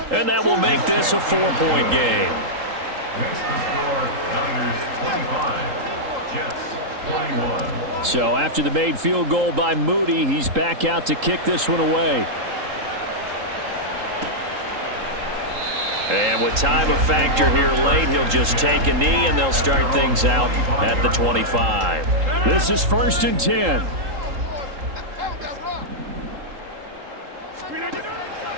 And that will make this a 4-point game. Next to score, Niners 25, Jets 21. So after the made field goal by Moody, he's back out to kick this one away. And with time a factor here late, he'll just take a knee and they'll start things out at the 25. This is first and 10.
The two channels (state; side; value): late; left; 3.8 ms